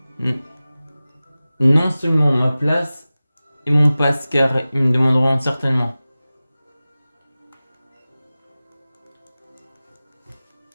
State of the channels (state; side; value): inverted; both; correlation -0.97